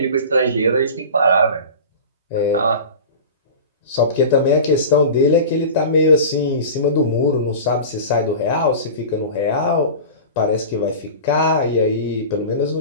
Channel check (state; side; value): inverted; both; correlation -0.34